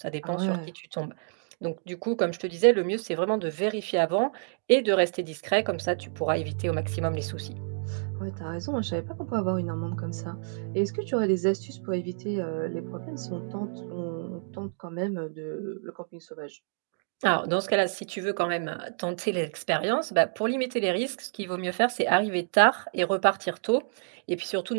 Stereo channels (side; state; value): left; silent; digital silence